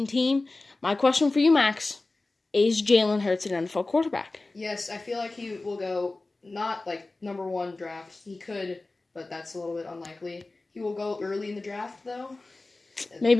team. My question for you, Max. Is Jalen Hurts an NFL quarterback? Yes, I feel like he will go not like number 1 draft. He could, but that's a little bit unlikely. He will go early in the draft, though.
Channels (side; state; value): right; quieter; 3.2 dB